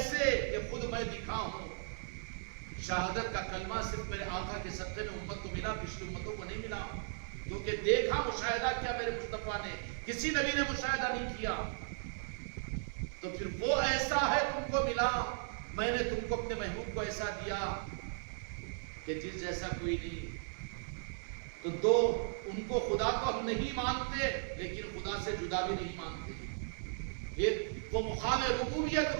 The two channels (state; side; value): silent; left; 53 dB below the other